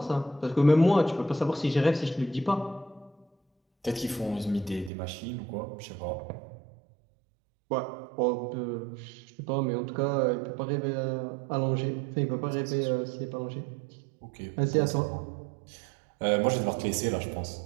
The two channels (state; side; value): drops out; left; at 4.9 s